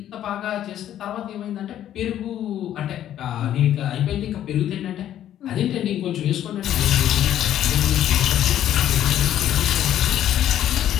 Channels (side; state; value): right; quieter; 11.4 dB